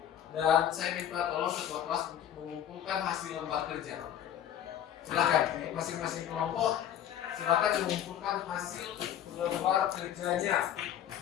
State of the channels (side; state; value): right; quieter; 10.5 dB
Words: dan saya minta tolong ketua kelas untuk mengumpulkan hasil lembar kerja. Silakan, masing-masing kelompok silakan mengumpulkan hasil lembar kerjanya.